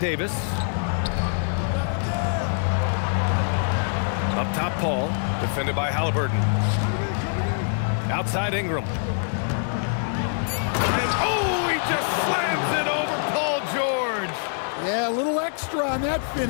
Davis. Up top, Paul. Defended by Halliburton. Outside, Ingram. And, oh, he just slams it over Paul George. Yeah, a little extra on that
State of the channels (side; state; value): right; silent; 62 dB below the other